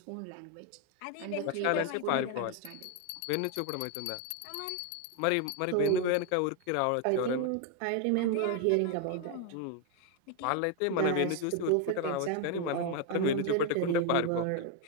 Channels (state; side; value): different; both; correlation 0.01